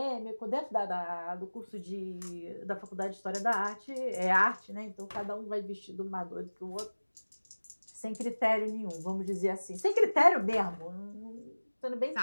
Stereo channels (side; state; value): both; inverted; correlation -1.00